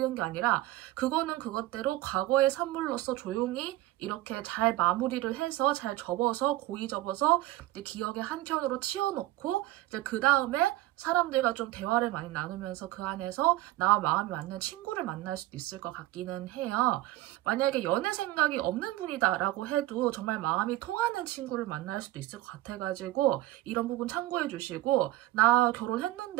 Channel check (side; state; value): left; quieter; 16.5 dB